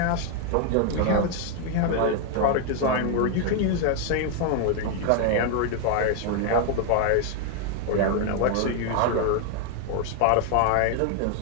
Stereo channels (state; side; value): different; both; correlation 0.00